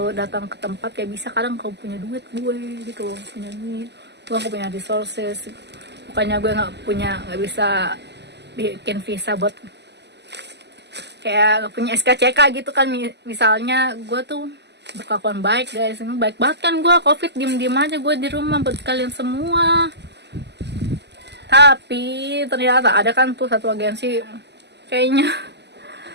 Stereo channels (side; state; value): left; late; 0.50 ms